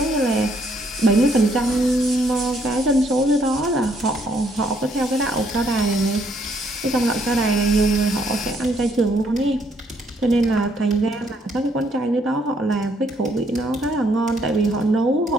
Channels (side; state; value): both; normal; correlation 0.69